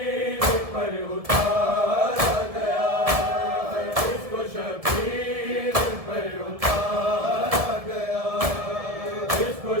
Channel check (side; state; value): left; late; 1.7 ms